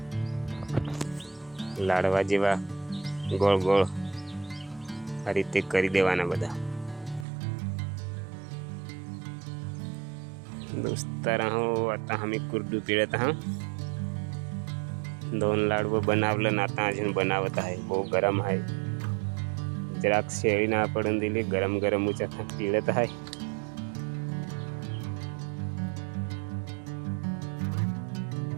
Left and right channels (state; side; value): drops out; left; at 7.2 s